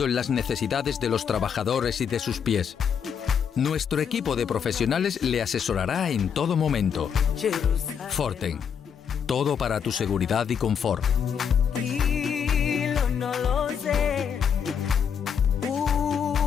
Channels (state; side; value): quieter; right; 7.4 dB